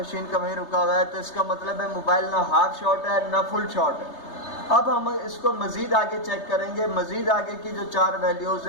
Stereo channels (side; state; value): right; late; 3.3 ms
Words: کا وہیں رکا ہوا ہے. تو اس کا مطلب ہے موبائل نہ ہاف شارٹ ہے نہ فل شارٹ ہے. اب ہم اس کو مزید آگے چیک کریں گے. مزید آگے کی جو 4 ویلیوز